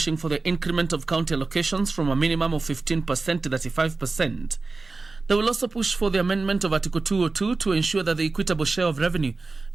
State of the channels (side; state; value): left; quieter; 3.7 dB